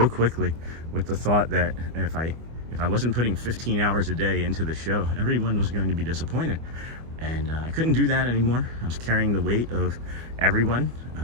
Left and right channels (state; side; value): late; left; 25 ms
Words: quickly with the thought that if I wasn't putting 15 hours a day into the show, everyone was going to be disappointed. And I couldn't do that anymore. I was carrying the weight of everyone